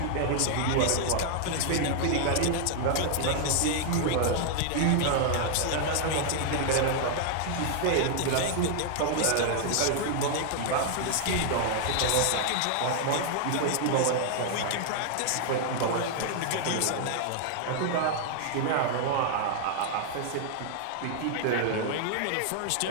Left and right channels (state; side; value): different; both; correlation 0.00